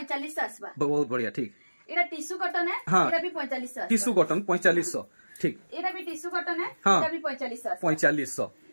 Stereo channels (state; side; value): inverted; both; correlation -1.00